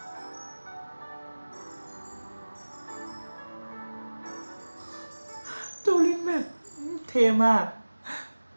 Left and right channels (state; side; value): inverted; both; correlation -1.00